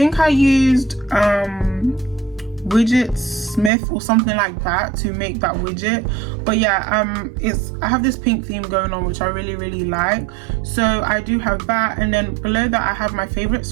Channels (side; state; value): left; drops out; at 3.7 s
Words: I used widget Smith or something like that to make that widget. But yeah, I have this pink theme going on, which I really like. So I do have that, and then below that I have my favorite